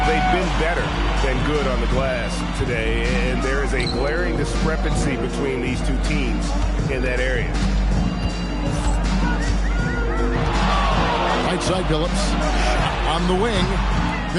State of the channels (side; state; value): both; identical; correlation 1.00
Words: they've been better than good on the glass today, and there is a glaring discrepancy between these two teams in that area. Right side, Billups. On the wing,